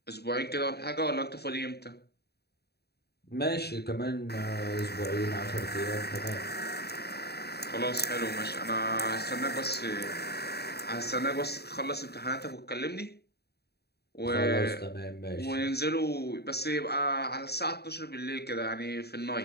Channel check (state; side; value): late; right; 0.47 ms